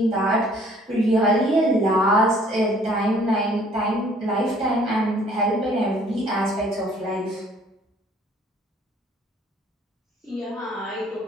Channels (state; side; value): normal; both; correlation 0.58